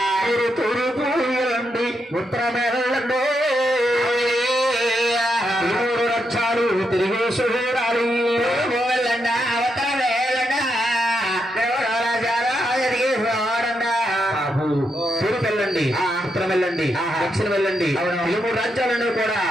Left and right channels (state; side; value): normal; both; correlation 0.82